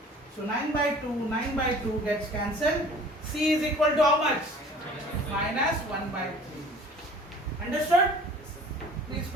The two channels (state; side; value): normal; both; correlation 0.48